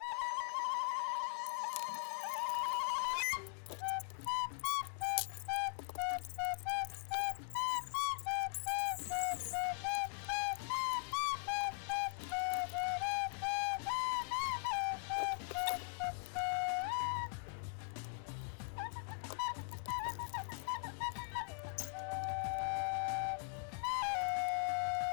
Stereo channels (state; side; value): silent; right; 51 dB below the other